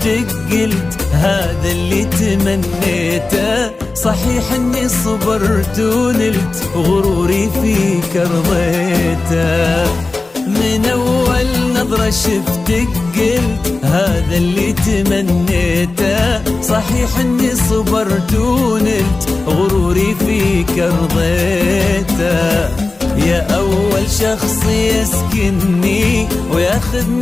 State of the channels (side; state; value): right; quieter; 3.4 dB